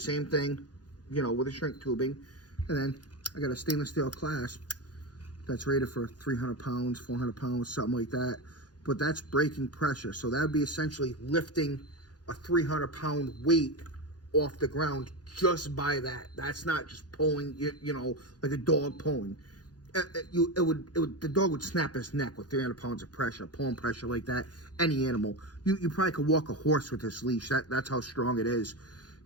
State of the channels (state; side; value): late; right; 0.69 ms